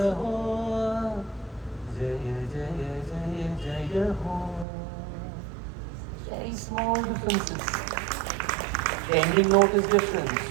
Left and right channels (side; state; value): left; drops out; at 4.7 s